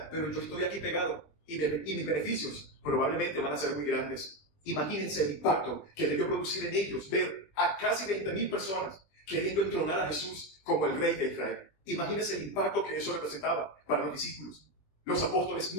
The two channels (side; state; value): right; late; 20 ms